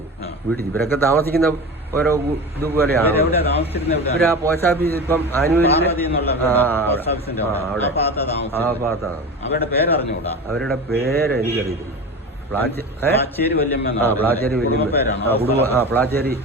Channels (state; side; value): normal; both; correlation 0.29